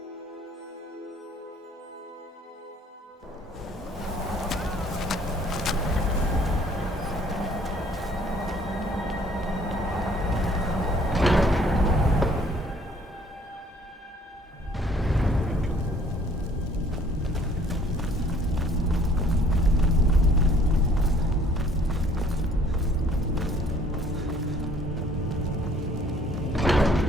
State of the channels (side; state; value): both; normal; correlation 0.59